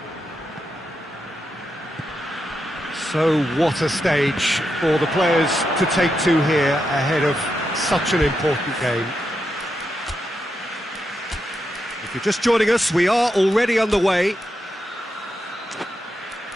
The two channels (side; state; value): both; normal; correlation 0.85